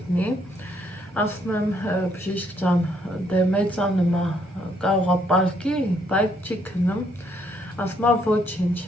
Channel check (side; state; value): both; normal; correlation 0.70